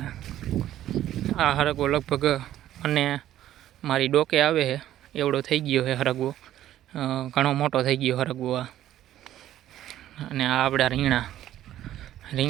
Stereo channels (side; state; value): left; quieter; 12.7 dB